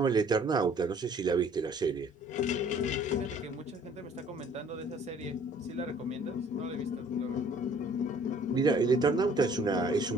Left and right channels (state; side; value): normal; both; correlation 0.56